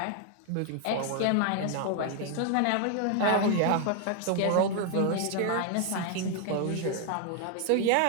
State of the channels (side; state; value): both; different; correlation 0.00